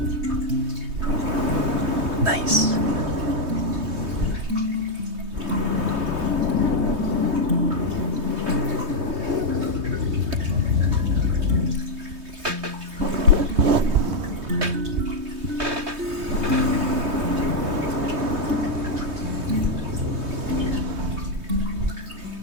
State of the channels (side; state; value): left; late; 3.2 ms